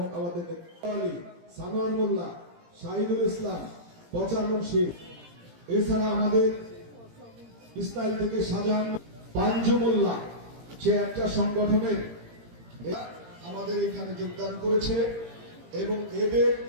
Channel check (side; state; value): left; late; 17 ms